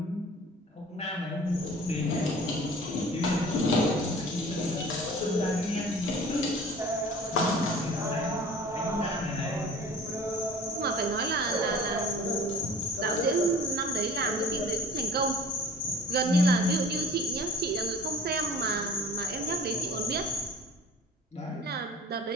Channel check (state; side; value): normal; both; correlation 0.45